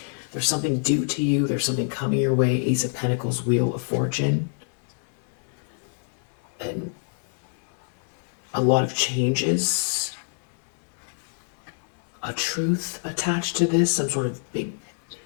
something due to you. There's something coming your way. Ace of Pentacles, Wheel of Fortune, and a lot of changes, a truth attached to this, some sort of big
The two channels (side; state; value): right; silent; digital silence